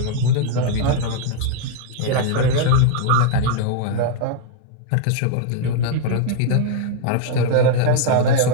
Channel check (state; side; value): different; both; correlation 0.00